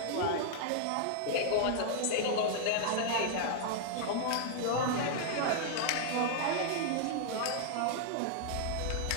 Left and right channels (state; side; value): different; both; correlation -0.01